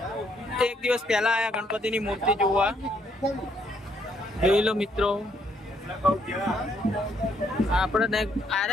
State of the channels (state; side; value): normal; both; correlation 0.71